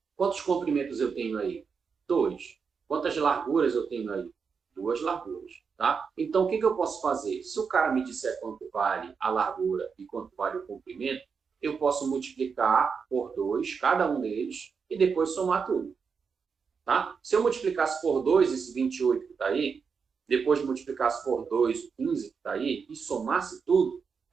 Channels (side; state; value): left; quieter; 5.8 dB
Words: Quantos comprimentos eu tenho aí? 2. Quantas larguras eu tenho aí? 2 larguras. Tá? Então, o que eu posso fazer? Se o cara me disser quanto vale a largura e quanto vale o comprimento, eu posso multiplicar por 2, cada um deles, e depois somar tudo. Tá? Se eu multiplicasse por 2 esse 28 que está aí, depois multiplicasse por 2 o 15 que está aí, e somasse tudo,